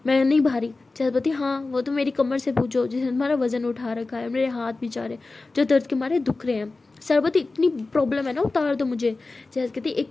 मैं नहीं भारी। सरस्वती हाँ वो तो मेरी कमर से पूछो जिसने तुम्हारा वजन उठा रखा है, मेरे हाथ भी जा रहे जो दर्द के मारे दुख रहे हैं। सरस्वती इतनी प्रॉब्लम है ना, उतार दो मुझे। जैस कहती एक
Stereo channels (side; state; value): right; quieter; 3.5 dB